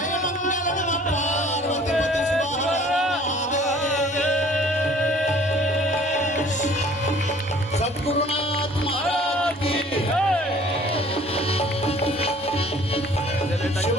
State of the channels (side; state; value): both; normal; correlation 0.53